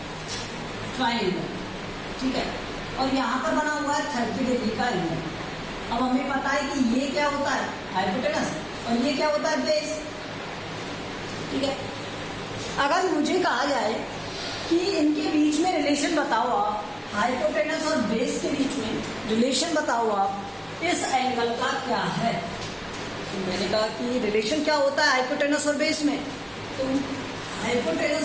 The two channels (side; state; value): both; identical; correlation 1.00